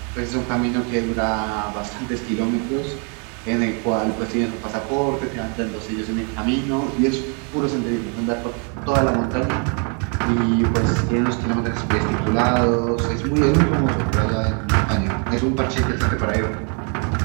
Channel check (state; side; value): quieter; left; 38.1 dB